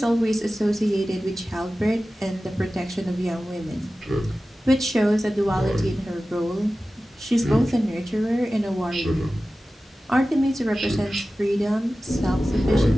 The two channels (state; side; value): normal; both; correlation 0.95